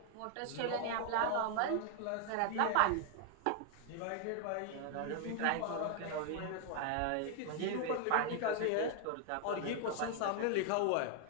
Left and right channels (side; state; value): both; different; correlation 0.00